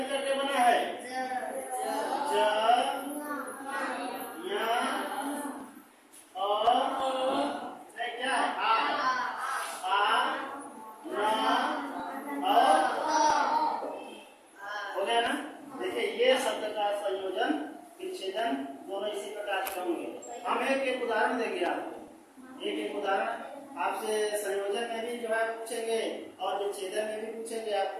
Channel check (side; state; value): both; identical; correlation 1.00